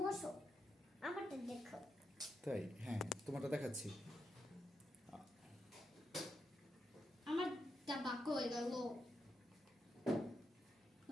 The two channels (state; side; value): normal; both; correlation 0.85